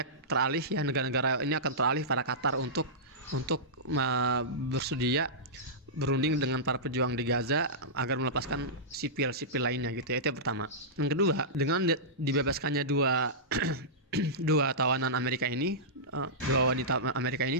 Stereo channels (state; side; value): normal; both; correlation -0.15